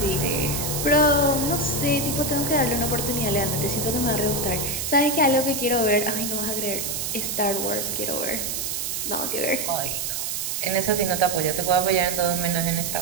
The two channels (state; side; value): noise; right; hiss, 2 dB below the sound